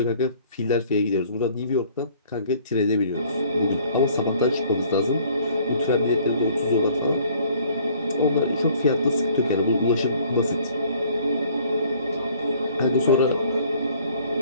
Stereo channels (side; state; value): both; inverted; correlation -0.57